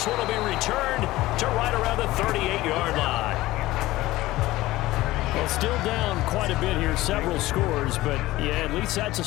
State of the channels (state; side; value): quieter; right; 17.6 dB